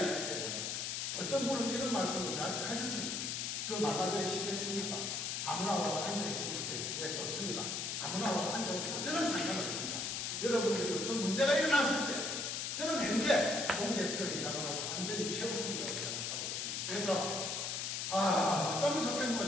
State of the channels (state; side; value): noise; left; hiss, 2 dB below the sound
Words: 때문에 어떤 분은 이런 말씀을 저한테 하셨습니다. 그 말라그리 시켰습니까? 아무나 와서 앉아있으면 예, 좋습니다. 아무나 와서 앉아있으면 저는 상관없습니다. 여러분들이 어떤 문제가 일어났을 때 저는 현재 동대표이장으로서 완전히 최우선이라고 생각하고 있습니다. 그래서 어쩌면 좋겠노